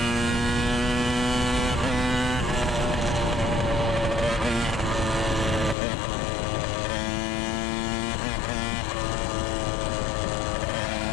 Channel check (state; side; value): drops out; right; at 5.8 s